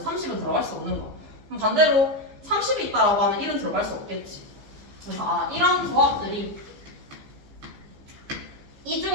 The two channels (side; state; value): left; late; 15 ms